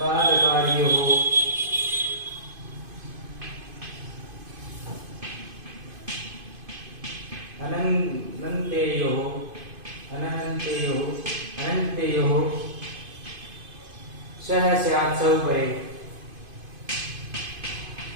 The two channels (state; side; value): late; left; 2.5 ms